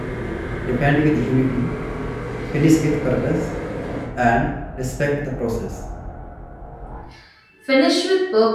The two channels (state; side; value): identical; both; correlation 1.00